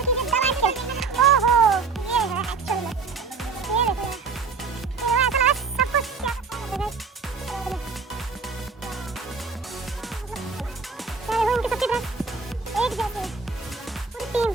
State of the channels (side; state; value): left; quieter; 5.0 dB